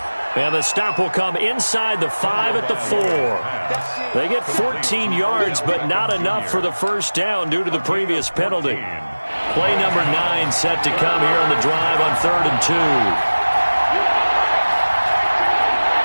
And the stop will come inside the 5 at the 4. They get 14 yards, but not enough for the first down due to the previous penalty. Play number 9 set to come here on the drive on 3rd and 2.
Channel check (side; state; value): both; inverted; correlation -1.00